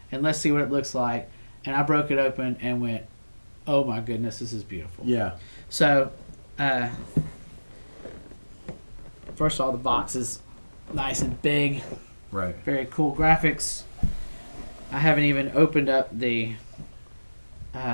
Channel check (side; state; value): both; inverted; correlation -1.00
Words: and let's see what it looks like. And I broke it open and went, oh my goodness, this is beautiful. Yeah. So first of all, the box is nice and big. Right. Very cool graphics. I haven't even opened up the